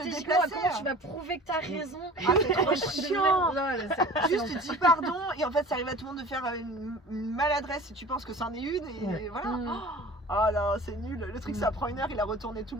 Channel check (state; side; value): normal; both; correlation 0.42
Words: déplacé. comment tu vas prouver que t'as raison. Ah, c'est trop chiant. Non, Juste tu dis pardon et en fait ça arrive à tout le monde de faire une maladresse si tu penses que c'en est une et Ouais. voilà. Mm. Oh là c'est nul. Le truc ça prend une heure, il a retourné tout